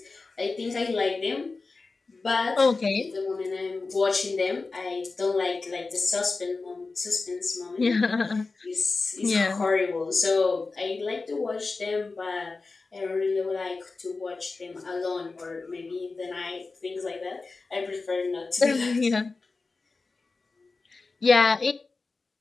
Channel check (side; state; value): right; quieter; 3.9 dB